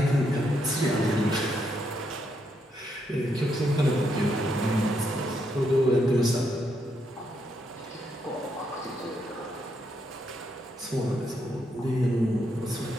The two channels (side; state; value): both; normal; correlation 0.78